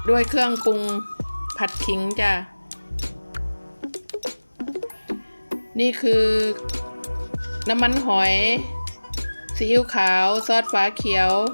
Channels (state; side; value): inverted; both; correlation -1.00